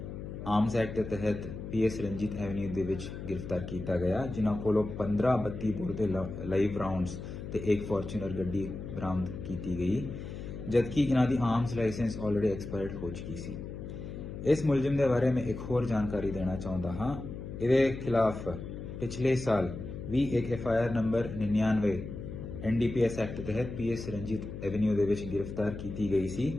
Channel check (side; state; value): left; noise; hum, 9 dB below the sound